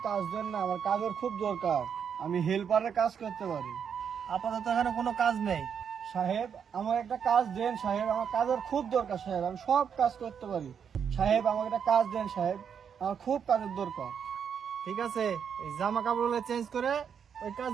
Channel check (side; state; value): left; quieter; 7.4 dB